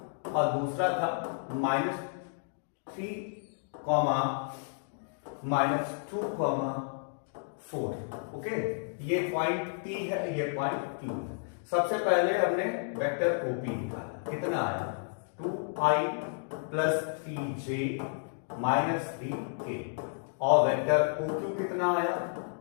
और दूसरा था -3, -2, 4। ओके, ये पॉइंट P है, ये पॉइंट Q है। सबसे पहले हमने वेक्टर OP निकाला, कितना आया 2i plus 3j minus 3k, और वेक्टर OQ कितना आया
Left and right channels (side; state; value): right; silent; digital silence